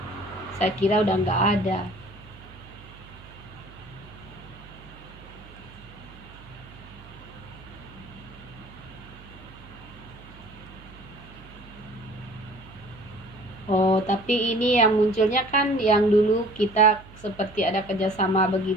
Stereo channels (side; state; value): right; noise; hum, 20 dB below the sound